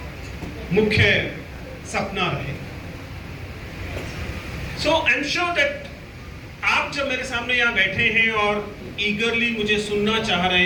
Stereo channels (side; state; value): both; identical; correlation 1.00